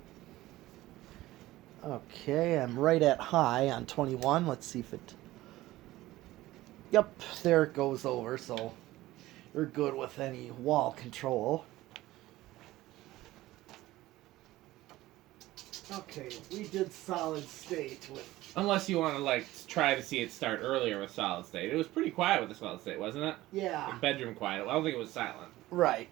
Okay, I'm right at high on 21. Let's see if it... Yep, there it goes over, so you're good with any wall control. Okay, we did solid state with... Unless you want to, try to see it start earlier with solid state. It was pretty quiet with the solid state, wasn't it? Yeah. Like bedroom quiet. I don't think it was silent. Right,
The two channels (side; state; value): left; quieter; 17.0 dB